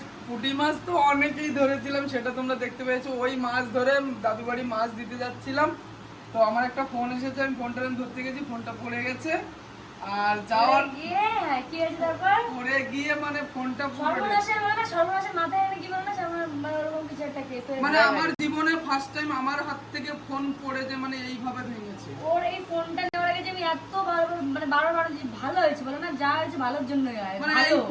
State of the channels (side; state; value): both; identical; correlation 1.00